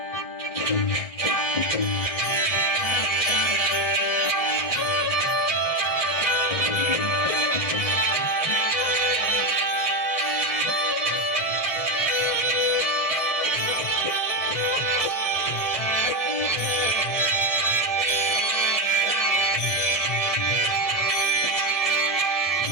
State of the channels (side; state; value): right; late; 1.7 ms